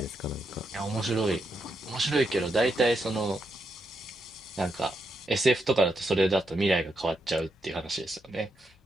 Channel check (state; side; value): normal; both; correlation 0.82